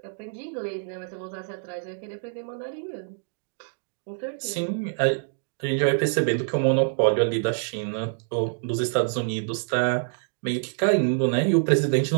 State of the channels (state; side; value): silent; left; digital silence